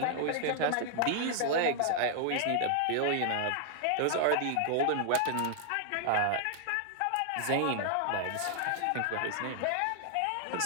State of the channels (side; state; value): both; different; correlation 0.00